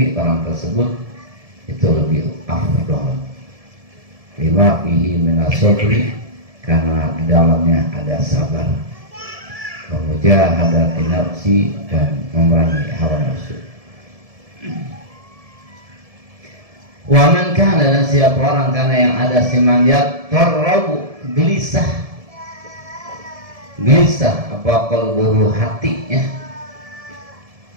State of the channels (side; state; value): left; late; 1.7 ms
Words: orang tersebut itu lebih afdal. Fi lima fihi minas sabri, karena di dalamnya ada sabar, mujahadati nafsi, dan memerangi hawa nafsu. Wa man kana, dan siapa orang karena yang ada siman yatarrabu, gelisah apa qalbuhu, hatinya,